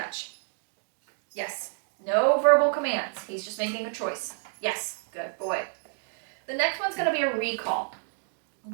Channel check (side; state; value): left; silent; 58 dB below the other